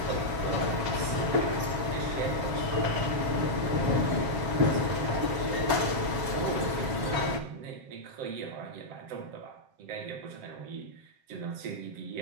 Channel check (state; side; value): late; left; 7.1 ms